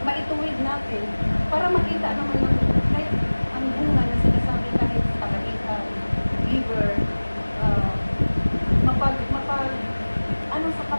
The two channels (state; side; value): inverted; both; correlation -1.00